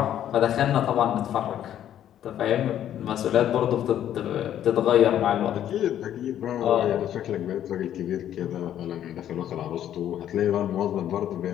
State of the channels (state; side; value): quieter; right; 10.9 dB